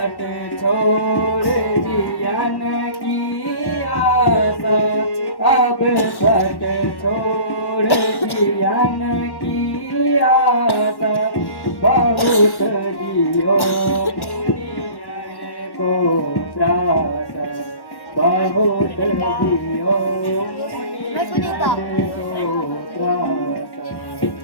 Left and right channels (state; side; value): late; right; 1.1 ms